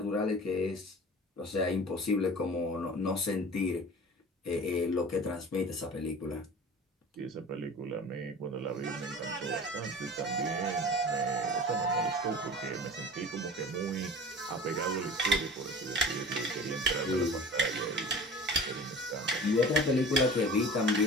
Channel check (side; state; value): both; normal; correlation 0.39